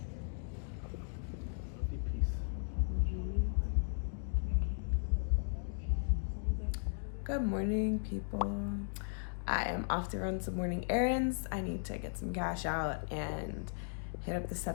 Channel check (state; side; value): silent; right; digital silence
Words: Good morning, people. I am off to run some morning errands. I need to get some cash out and hit up the